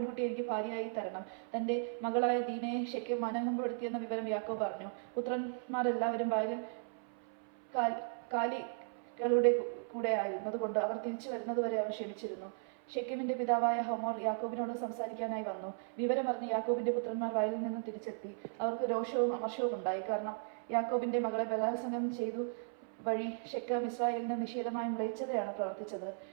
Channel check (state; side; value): silent; left; 53 dB below the other